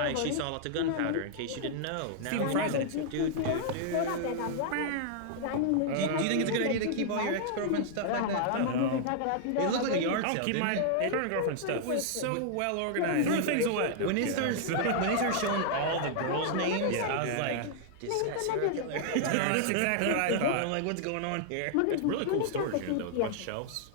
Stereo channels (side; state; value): both; different; correlation -0.01